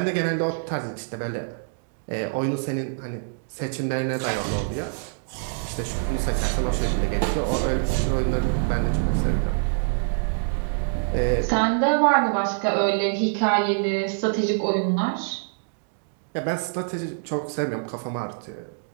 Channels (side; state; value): left; silent; digital silence